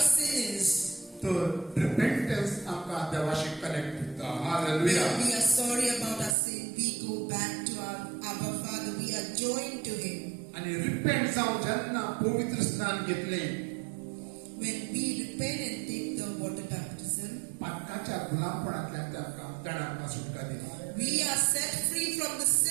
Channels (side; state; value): left; drops out; at 6.4 s